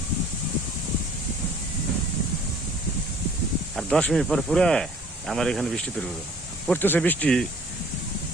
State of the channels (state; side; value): normal; both; correlation 0.54